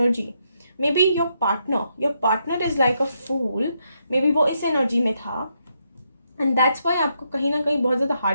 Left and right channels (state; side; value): inverted; both; correlation -0.79